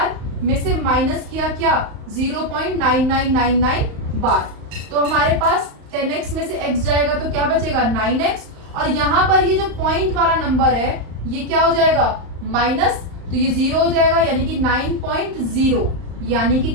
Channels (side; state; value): left; late; 35 ms